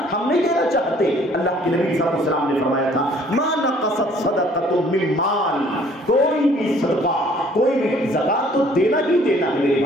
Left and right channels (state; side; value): normal; both; correlation 0.58